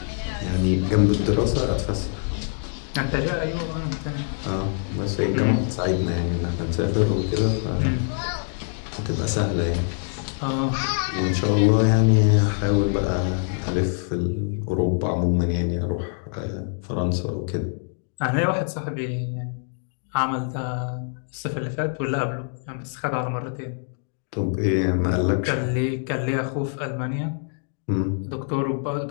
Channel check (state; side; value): silent; right; 62 dB below the other